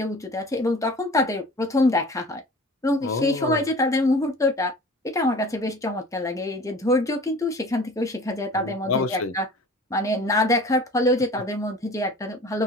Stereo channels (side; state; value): both; normal; correlation 0.43